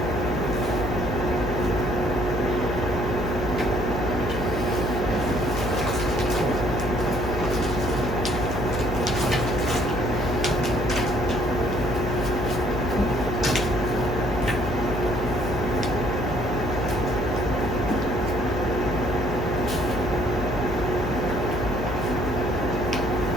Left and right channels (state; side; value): noise; left; hum, 5 dB below the sound